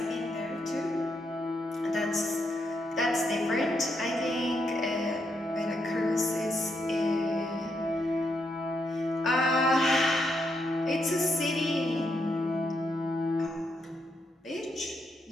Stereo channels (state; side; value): normal; both; correlation 0.79